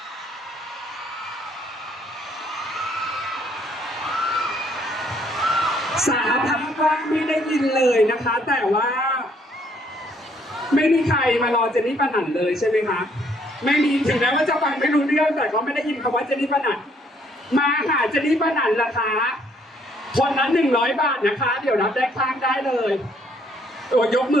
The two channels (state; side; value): normal; both; correlation 0.66